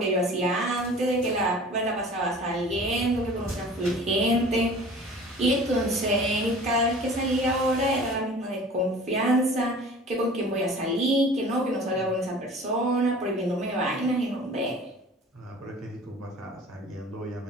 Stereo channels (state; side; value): normal; both; correlation 0.44